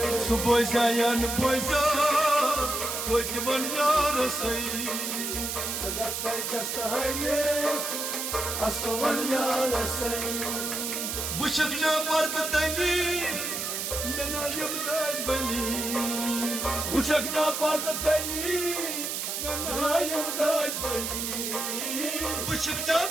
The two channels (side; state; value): right; noise; hiss, 3 dB below the sound